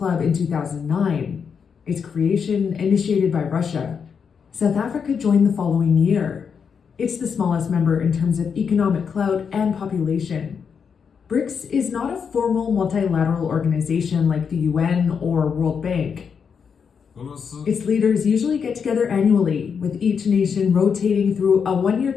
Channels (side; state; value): right; quieter; 6.5 dB